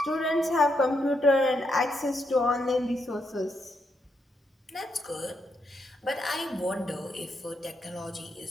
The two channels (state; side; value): normal; both; correlation 0.79